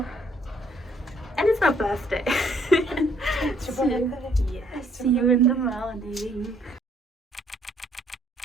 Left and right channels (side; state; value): both; normal; correlation 0.66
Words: and it's my birthday. It's your birthday. Yes, see you in the morning.